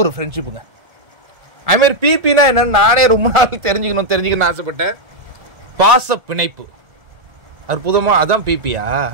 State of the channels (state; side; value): late; left; 1.7 ms